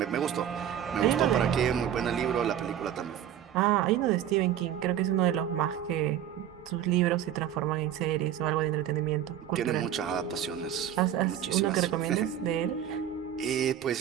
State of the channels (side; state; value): left; quieter; 10.3 dB